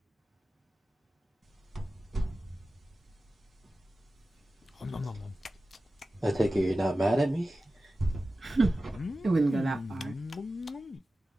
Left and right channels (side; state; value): both; normal; correlation 0.95